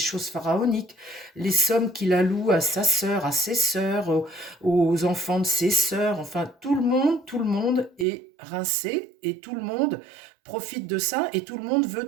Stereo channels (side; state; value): left; drops out; at 8.1 s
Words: pharaoniques, les sommes qu'il alloue à sa sœur, à ses sœurs, aux enfants de ses sœurs, enfin tout le monde est rincé et tout le monde profite de ça et tout le monde veut